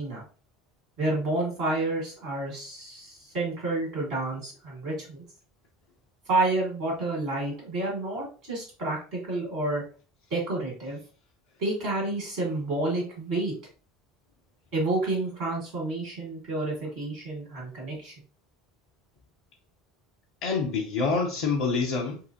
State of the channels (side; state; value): both; normal; correlation 0.32